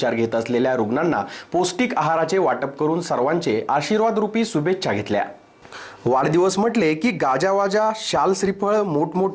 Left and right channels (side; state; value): both; identical; correlation 1.00